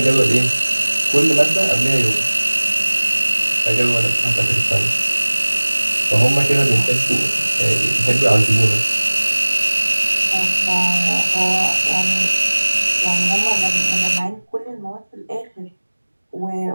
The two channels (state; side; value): inverted; both; correlation -1.00